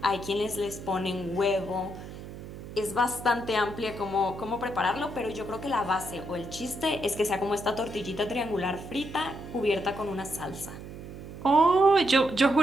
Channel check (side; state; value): right; noise; hum, 12 dB below the sound